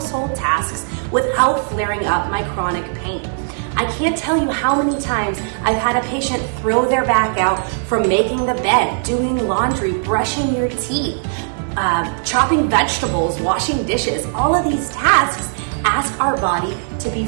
tasks without flaring up my chronic pain. I can't tell you how many times I've had a patient throw their back out from making the bed, doing laundry, brushing your teeth, chopping vegetables, washing dishes. All of these tasks ask our body to be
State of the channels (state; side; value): silent; left; 61 dB below the other